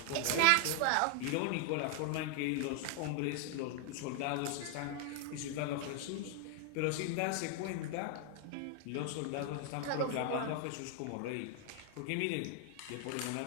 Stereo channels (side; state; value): both; different; correlation 0.00